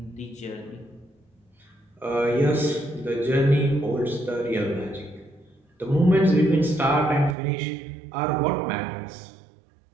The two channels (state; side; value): drops out; left; at 7.4 s